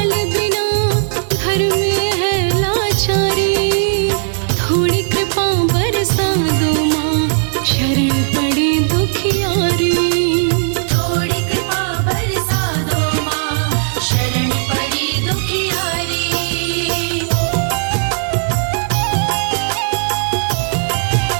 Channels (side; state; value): left; silent; 67 dB below the other